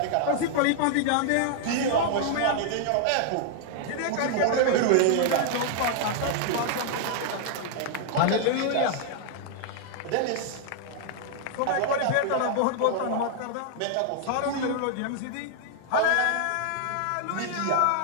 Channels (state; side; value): different; both; correlation 0.00